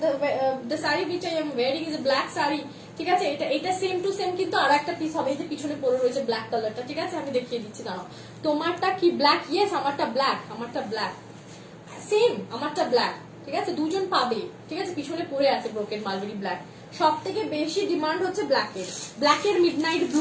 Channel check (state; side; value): identical; both; correlation 1.00